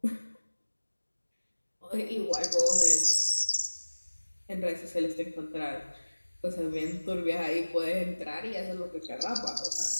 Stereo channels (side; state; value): both; inverted; correlation -1.00